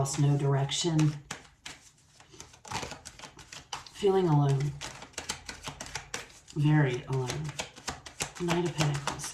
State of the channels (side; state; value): both; identical; correlation 1.00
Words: no direction. Feeling alone. Very alone. Knight of Pentacles.